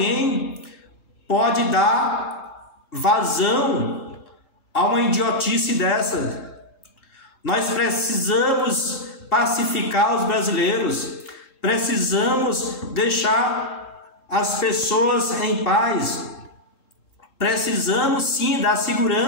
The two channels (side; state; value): right; late; 3.7 ms